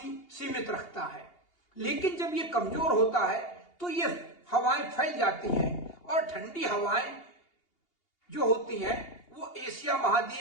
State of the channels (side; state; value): right; late; 2.8 ms